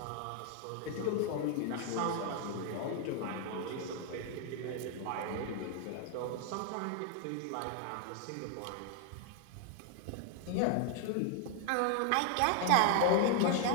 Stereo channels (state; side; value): different; both; correlation 0.00